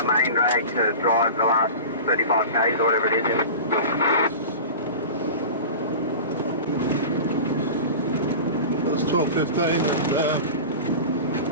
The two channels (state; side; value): inverted; both; correlation -0.33